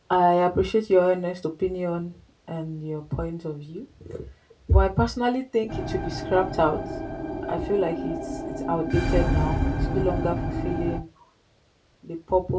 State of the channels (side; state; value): both; identical; correlation 1.00